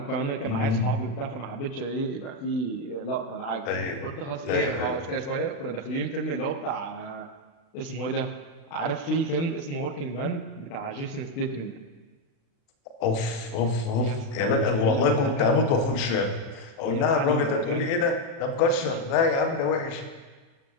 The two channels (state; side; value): late; right; 36 ms